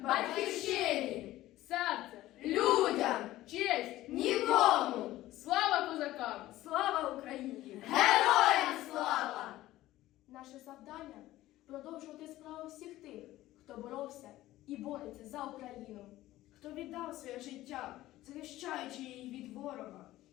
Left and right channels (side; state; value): right; quieter; 15.8 dB